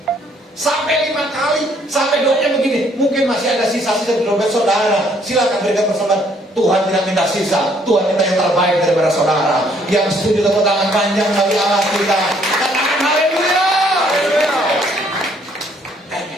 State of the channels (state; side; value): normal; both; correlation 0.65